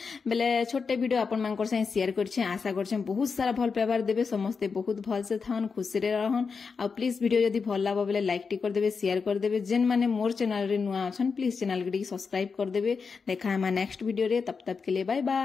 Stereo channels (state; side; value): quieter; right; 5.2 dB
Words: बेले छोटे वीडियो आपण मानकर से शेयर करछे आशा करछे बहुत सारा भल पेपर देबे समस्ते बहुत भल से थान खुशी रे रहन आ प्लीज वीडियो यदि भल लागो बेले लाइक टी कर देबे शेयर कर देबे जेन माने मोर चैनल रे नुआ अछन प्लीज चैनल के सब्सक्राइब कर देबे देखा हम नेक्स्ट वीडियो रे तब तक के लिए बाय